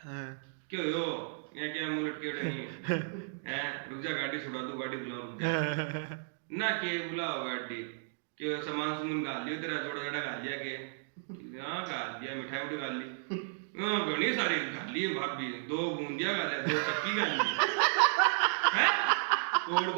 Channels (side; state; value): left; silent; digital silence